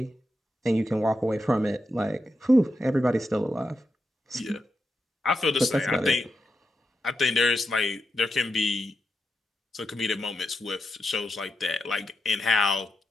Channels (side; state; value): both; normal; correlation 0.86